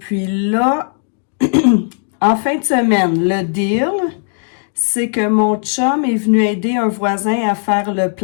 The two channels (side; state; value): right; silent; 58 dB below the other